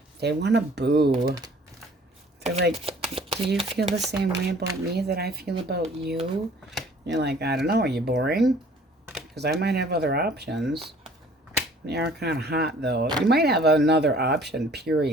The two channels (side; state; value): both; normal; correlation 0.54